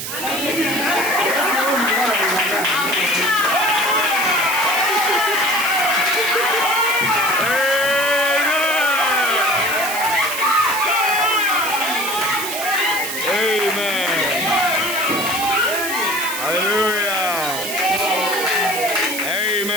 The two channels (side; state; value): right; noise; hiss, 6 dB below the sound